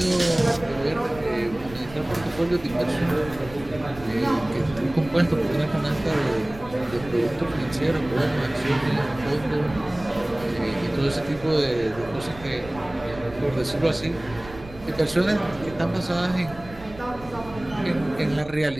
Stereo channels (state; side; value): noise; right; rumble, 17 dB below the sound